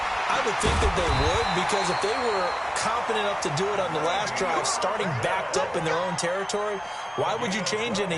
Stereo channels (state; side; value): identical; both; correlation 1.00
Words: I would think that they would, because if they were confident enough to do it on the last drive, starting backed up in their own territory, why would you change